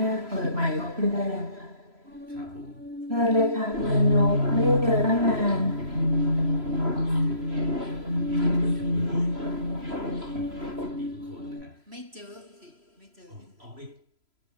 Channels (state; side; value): late; left; 3.0 ms